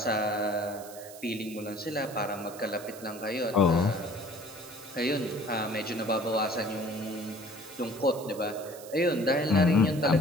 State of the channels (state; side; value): noise; right; hiss, 17 dB below the sound